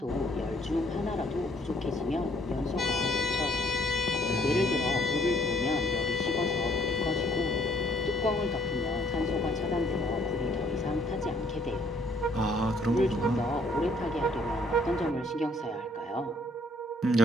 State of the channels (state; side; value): normal; both; correlation 0.64